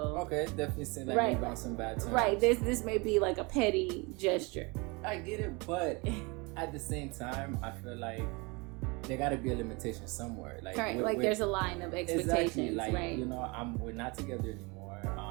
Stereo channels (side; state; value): left; quieter; 27.9 dB